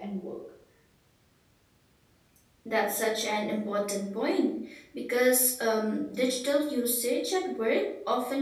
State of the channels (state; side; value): identical; both; correlation 1.00